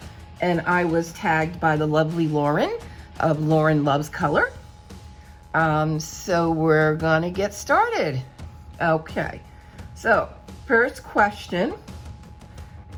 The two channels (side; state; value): both; identical; correlation 1.00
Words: And I was tagged by the lovely Lauren of Lauren Loves Color. So we're gonna get started. Okay, so first question